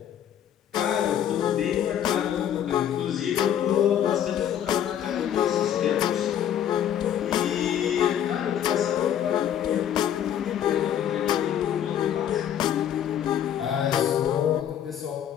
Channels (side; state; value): right; quieter; 10.0 dB